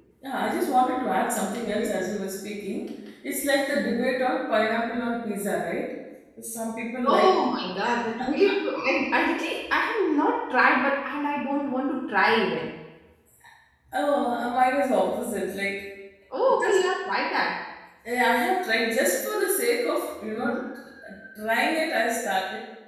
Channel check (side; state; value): both; identical; correlation 1.00